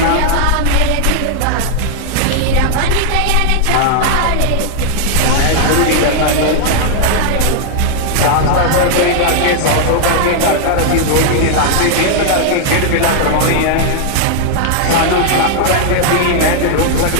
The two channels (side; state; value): both; different; correlation 0.00